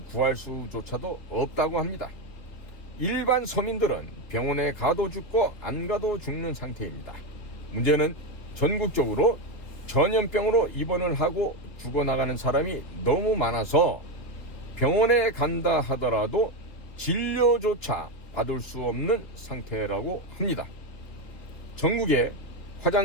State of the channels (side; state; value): right; late; 3.2 ms